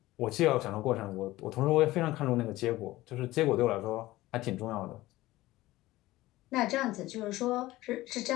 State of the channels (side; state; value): right; quieter; 17.5 dB